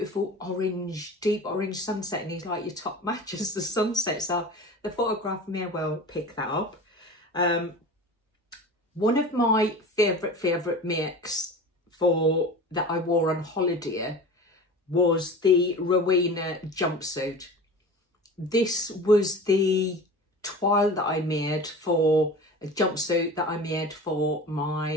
orange, deep orange sunset, and he's like, your top matches the sunset. So the photograph may well pick that up. One of my favourite makes that I wore on holiday was the Rowena jumpsuit. This was the toile that I made for a jumpsuit that I made for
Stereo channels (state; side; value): normal; both; correlation 0.35